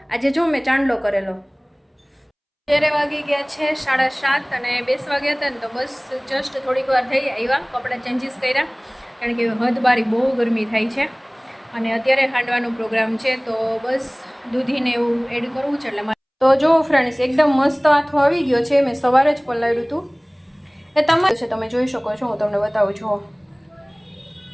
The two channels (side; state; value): both; identical; correlation 1.00